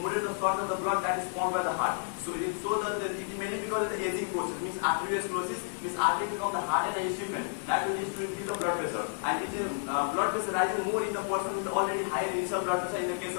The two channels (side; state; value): right; silent; digital silence